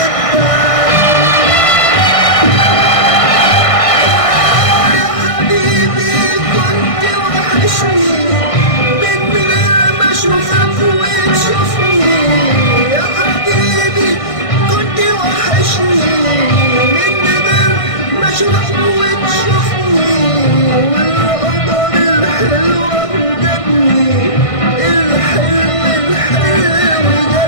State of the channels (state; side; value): late; right; 1.6 ms